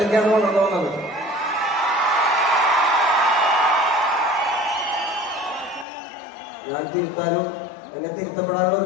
വളർന്നു വന്നത്. ഞാൻ തിരുത്താനും എന്നെ തിരുത്തപ്പെടാനുള്ള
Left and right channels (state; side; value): drops out; right; at 5.9 s